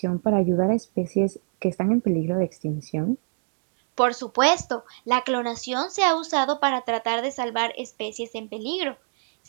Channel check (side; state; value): left; silent; digital silence